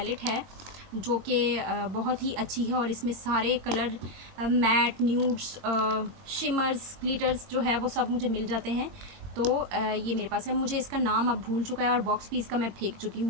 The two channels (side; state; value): left; late; 22 ms